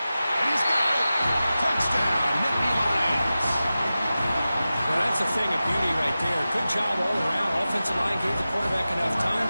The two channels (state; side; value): inverted; both; correlation -0.94